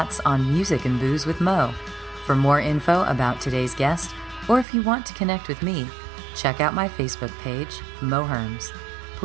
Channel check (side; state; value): left; drops out; at 4.7 s